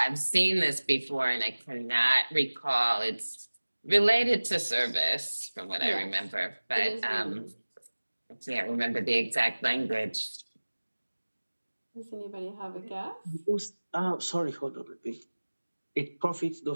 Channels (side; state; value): both; inverted; correlation -1.00